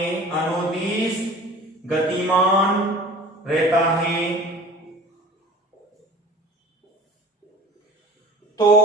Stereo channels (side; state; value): both; normal; correlation 0.42